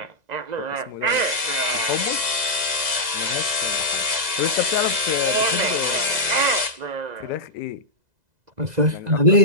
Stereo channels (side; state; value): left; late; 2.0 ms